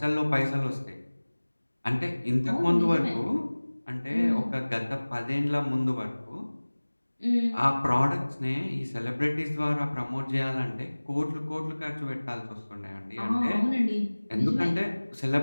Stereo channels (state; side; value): inverted; both; correlation -1.00